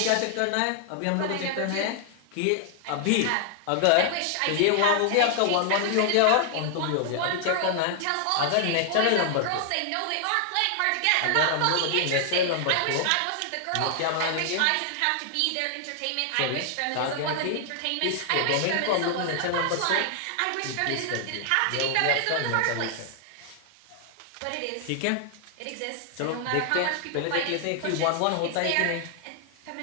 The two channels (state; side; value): different; both; correlation 0.00